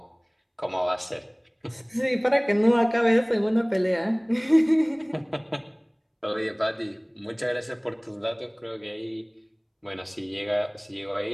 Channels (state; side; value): identical; both; correlation 1.00